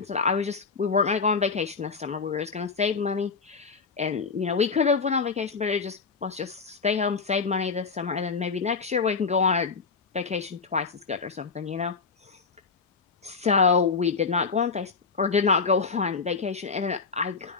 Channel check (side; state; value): right; quieter; 5.0 dB